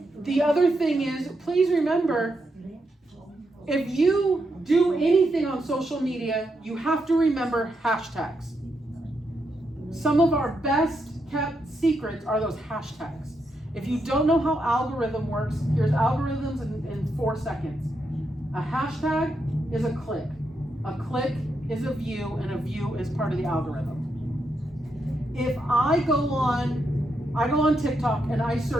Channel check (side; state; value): both; normal; correlation 0.82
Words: The other thing is, please remember, if you do anything on social media, you have to remember hashtags. Some of our best kept secrets are those hashtags. If you don't know how algorithm works, here's algorithms in 4 seconds. A hashtag is a click. A click is a view, and a view is part of the algorithm. If I go on TikTok and I